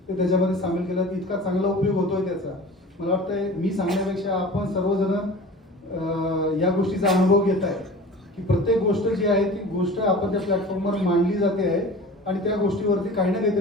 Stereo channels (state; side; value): normal; both; correlation 0.39